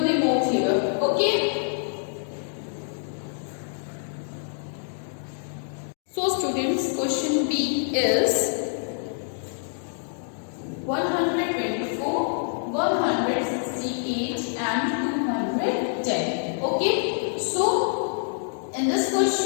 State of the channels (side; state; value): right; silent; digital silence